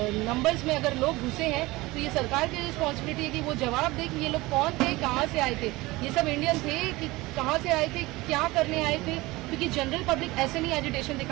नंबर्स में अगर लोग घुसे हैं तो ये सरकार की रिस्पॉन्सिबिलिटी है कि वो जवाब दे कि ये लोग कौन थे, कहाँ से आए थे, ये सब इंडियन थे कि कहाँ से आए थे, क्या करने आए थे, क्योंकि जनरल पब्लिक ऐसे नहीं एजिटेशन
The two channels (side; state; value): left; quieter; 20.9 dB